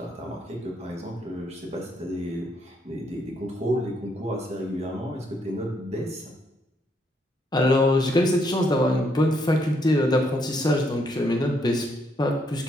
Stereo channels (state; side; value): normal; both; correlation 0.74